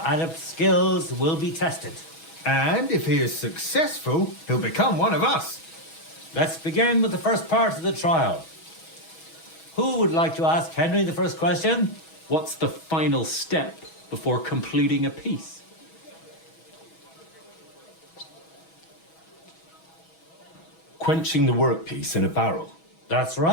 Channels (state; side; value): late; right; 6.2 ms